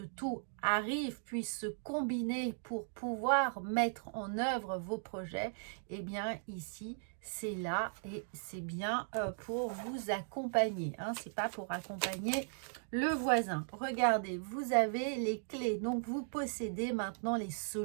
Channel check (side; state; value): left; silent; digital silence